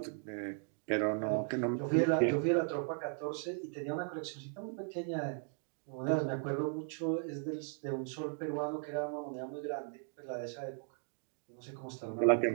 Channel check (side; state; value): left; silent; 53 dB below the other